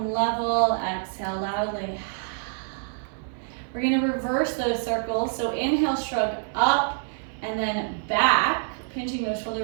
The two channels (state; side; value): silent; left; digital silence